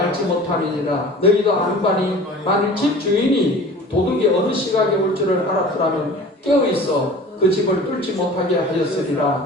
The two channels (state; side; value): normal; both; correlation 0.42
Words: 못함이니라. 너희도 아무간이 만일 집 주인이 도둑이 어느 시각에 올 줄을 알았더라면 깨어있어 그 집을 뚫지 못하게